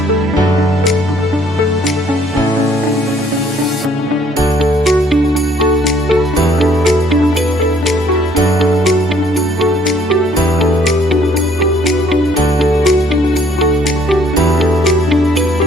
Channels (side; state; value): both; normal; correlation 0.62